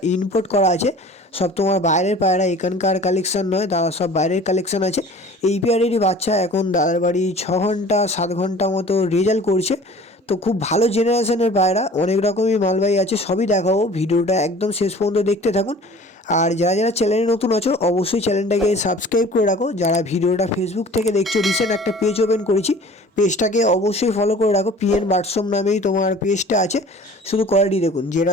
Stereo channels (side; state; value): both; normal; correlation 0.45